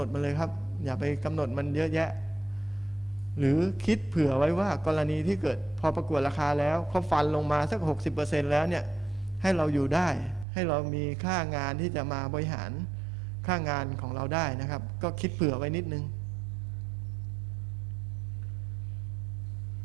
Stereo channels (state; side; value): drops out; left; at 10.5 s